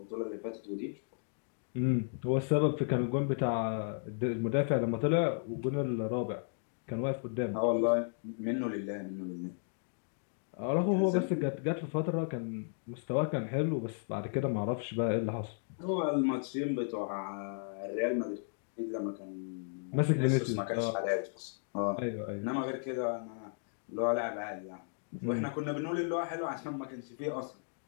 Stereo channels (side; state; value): right; silent; digital silence